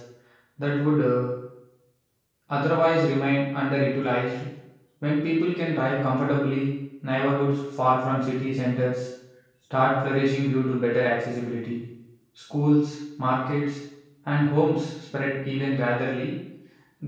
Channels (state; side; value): identical; both; correlation 1.00